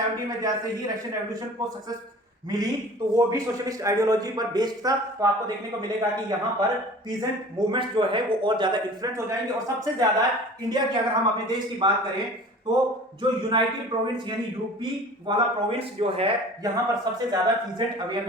में जैसे ही रशियन रेवोल्यूशन को सक्सेस मिली, तो वो भी सोशलिस्ट आइडियोलॉजी पर बेस्ड था। तो आपको देखने को मिलेगा कि यहाँ पर पीजेंट मूवमेंट्स जो है वो और ज्यादा इन्फ्लुएंस हो जाएंगे। और सबसे ज्यादा इंडिया की, अगर हम अपने देश की बात करें, तो जो यूनाइटेड प्रोविंस यानी यूपी वाला प्रोविंस जो है, यहाँ पर सबसे ज्यादा पीजेंट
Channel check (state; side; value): normal; both; correlation 0.43